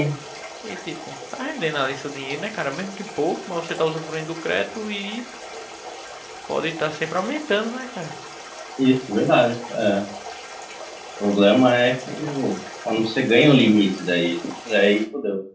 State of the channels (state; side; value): identical; both; correlation 1.00